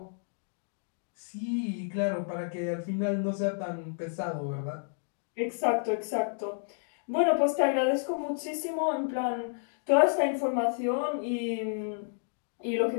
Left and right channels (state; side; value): silent; right; digital silence